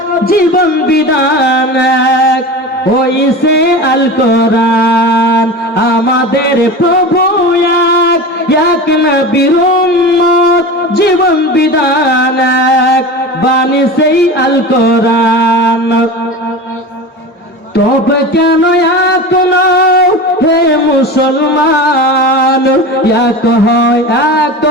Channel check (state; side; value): normal; both; correlation 0.30